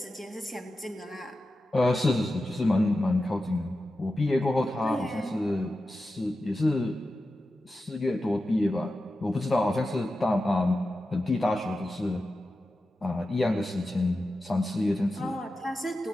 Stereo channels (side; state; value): both; normal; correlation 0.92